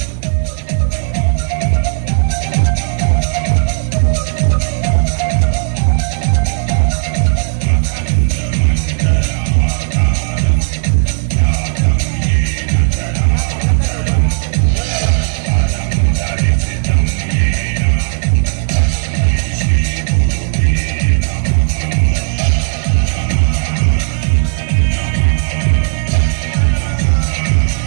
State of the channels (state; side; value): silent; left; digital silence